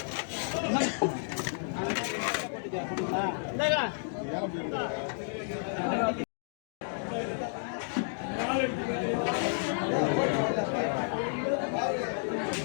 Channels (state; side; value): silent; right; digital silence